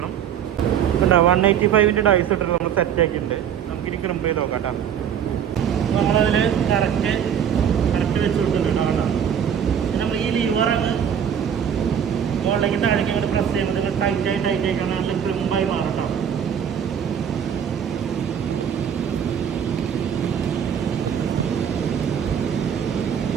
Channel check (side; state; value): left; quieter; 8.5 dB